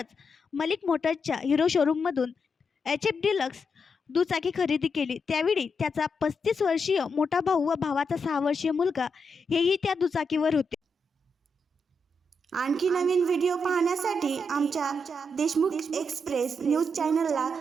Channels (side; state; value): both; normal; correlation 0.83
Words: मलिक मोटर्सच्या हिरो शोरूममधून HF डिलक्स दुचाकी खरेदी केली. त्यावेळी त्याचा 35 वर्षीय मोठा भाऊ व भावाचा 6 वर्षीय मुलगा हेही त्या दुचाकीवर होते. आणखी नवीन व्हिडिओ पाहण्यासाठी आमच्या देशमुख एक्सप्रेस न्यूज चॅनलला